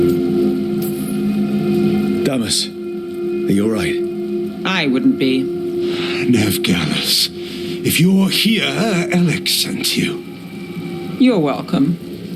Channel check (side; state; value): both; identical; correlation 1.00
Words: Damas, are you alright? I wouldn't be. Nev Gallus, if you're here, Alec sent you. You're welcome.